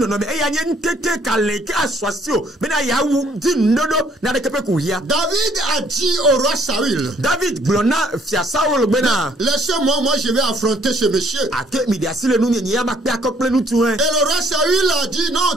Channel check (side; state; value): both; normal; correlation 0.62